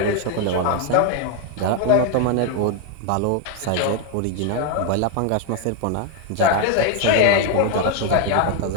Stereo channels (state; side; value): different; both; correlation 0.01